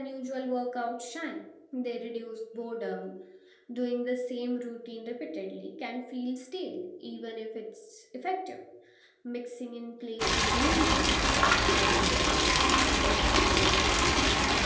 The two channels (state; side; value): identical; both; correlation 1.00